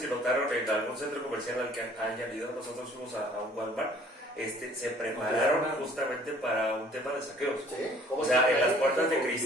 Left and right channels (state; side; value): normal; both; correlation 0.55